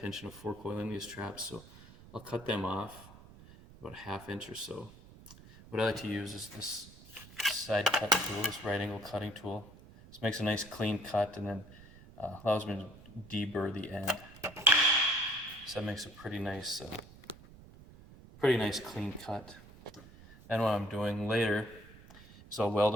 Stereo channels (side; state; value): right; noise; rumble, 20 dB below the sound